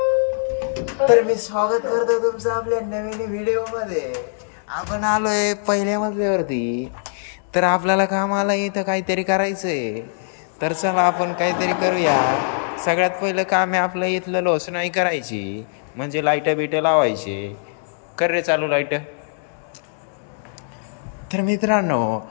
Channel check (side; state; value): right; silent; digital silence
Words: तर मी स्वागत करतो तुमचं आपल्या नवीन व्हिडिओ मध्ये. आपण आलोय पहिल्या मजल्यावरती. तर आपल्याला कामाला इथं काहीतरी करायचंय. तर चला आपण काहीतरी करूया. सगळ्यात पहिलं काम आहे आपलं इथलं लोसनाई करायची, म्हणजे लाईट बिट लावायची. कर रे चालू लाईट. तर मित्रांनो,